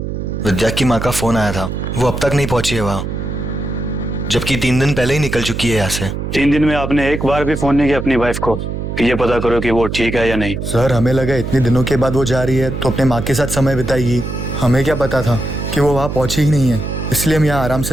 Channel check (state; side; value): noise; right; hum, 5 dB below the sound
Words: विद्या की माँ का फोन आया था, वो अब तक नहीं पहुंची है वहाँ, जबकि 3 दिन पहले ही निकल चुकी है यहाँ से। 3 दिन में आपने एक बार भी फोन नहीं किया अपनी वाइफ को कि ये पता करो कि वो ठीक है या नहीं? सर, हमें लगा इतने दिनों के बाद वो जा रही है तो अपने माँ के साथ समय बिताएगी। हमें क्या पता था कि वो वहाँ पहुंची ही नहीं है, इसलिए हम यहाँ आराम